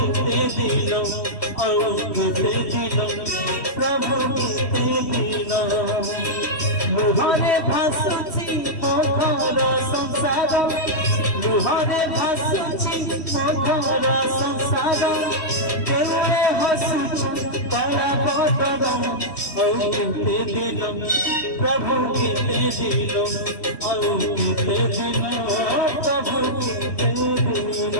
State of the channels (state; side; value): late; right; 3.1 ms